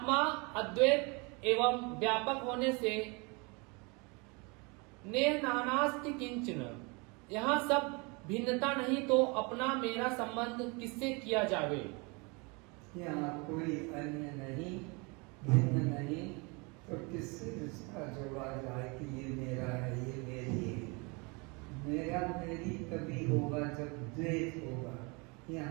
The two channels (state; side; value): quieter; left; 29.5 dB